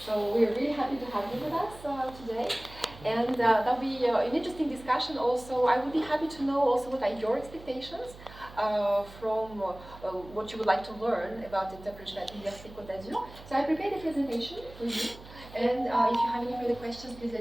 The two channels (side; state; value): right; noise; hum, 18 dB below the sound